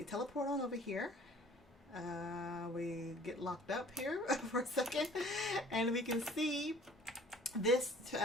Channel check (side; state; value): both; normal; correlation 0.51